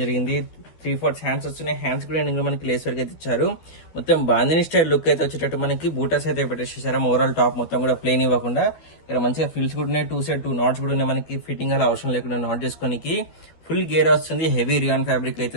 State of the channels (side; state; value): right; late; 12 ms